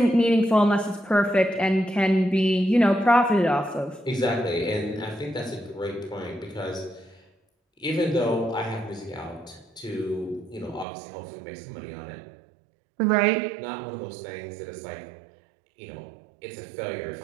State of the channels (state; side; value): drops out; left; at 10.9 s